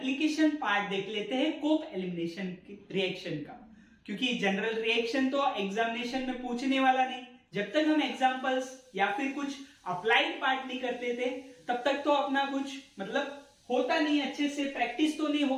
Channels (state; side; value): identical; both; correlation 1.00